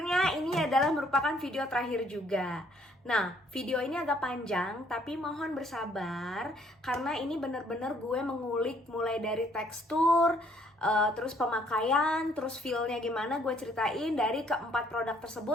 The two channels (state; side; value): normal; both; correlation 0.64